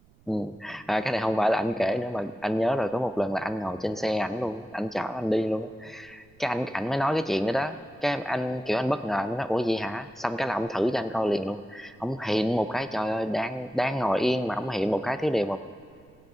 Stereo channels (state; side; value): noise; right; rumble, 29 dB below the sound